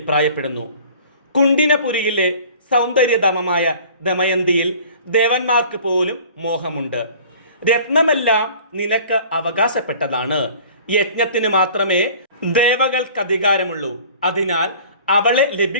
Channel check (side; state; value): both; inverted; correlation -0.47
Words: കുണ്ടിനപുരിയിലെ സൗന്ദര്യധാമമായ ദമയന്തിയിൽ ദേവന്മാർക്ക് പോലും മോഹമുണ്ട്. രത്നമെല്ലാം നിനക്ക് അവകാശപ്പെട്ടതാണ്. യജ്ഞത്തിന് മാത്രമേ ദേവകൾക്ക് അധികാരമുള്ളൂ. അതിനാൽ അവളെ